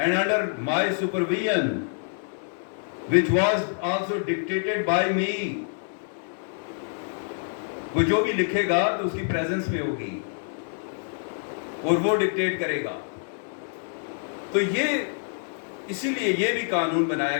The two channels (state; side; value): silent; right; 60 dB below the other